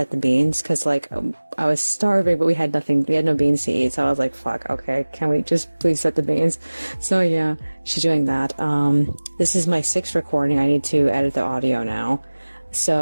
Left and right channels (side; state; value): both; inverted; correlation -1.00